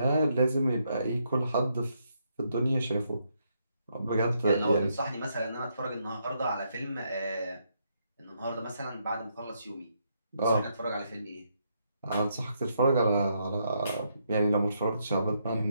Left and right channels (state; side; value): inverted; both; correlation -0.77